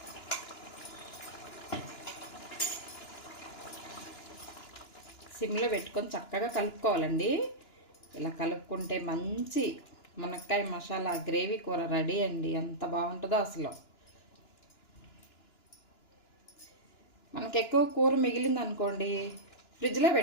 సిమ్లో పెట్టుకొని చక్కగా కలుపుకోవాలండి. ఇలా కలుపుకుంటే మంచి మునక్కాయ మసాలా గ్రేవీ కూర రెడీ అండి. ఎంత బాగుంటుందో అసలు. మనకు ఎక్కువ కూర మిగిలింది అనుకోండి, ఫ్రిడ్జ్లో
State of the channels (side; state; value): right; late; 2.9 ms